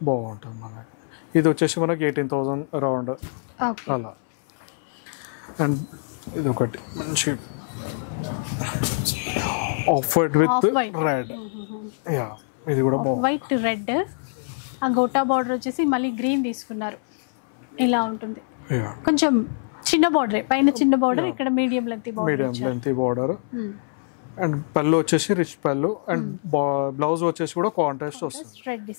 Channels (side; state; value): right; silent; 62 dB below the other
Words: బాగుంటుంది మనకి. ఇది వచ్చేసి మనకి 18,000 అరౌండ్ అలా. అండ్ ఇది ఒకటి మంచి ఆఫ్ వైట్ విత్ రెడ్. ఇది కూడా వైట్ రెడ్. ఆ గోటా బార్డర్ వచ్చేసి మళ్ళీ గ్రీన్ తీసుకున్నారు. ఇలా ఉంటుంది, కొంచెం చిన్న బార్డర్, పైన చిన్న బార్డర్, ఇక్కడ మీడియం లెంత్ బార్డర్. అండ్ పళ్ళు వచ్చేసి రిచ్ పళ్ళు. అండ్ బ్లౌజ్ వచ్చేసి కూడా కాంట్రాస్ట్ వస్తుంది, రెడ్